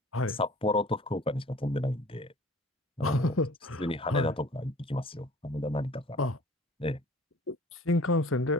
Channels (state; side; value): normal; both; correlation 0.48